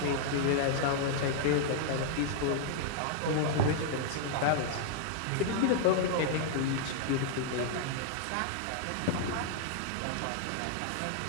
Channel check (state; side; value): different; both; correlation -0.01